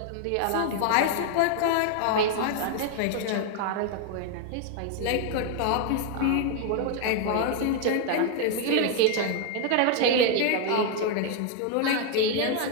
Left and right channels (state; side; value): different; both; correlation 0.00